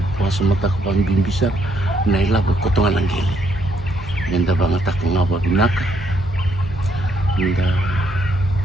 pas mata kapang bimbisar nailabo kotongan ang gili nda bangata ko nga ba binaka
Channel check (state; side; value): normal; both; correlation 0.72